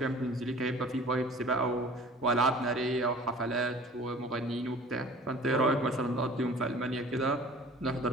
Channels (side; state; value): both; normal; correlation 0.46